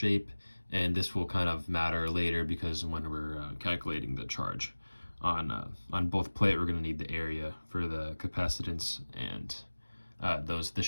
and this will kind of matter later because when we're calculating the charge on both plate, we're going to need the area for the capacitance, and the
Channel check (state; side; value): inverted; both; correlation -1.00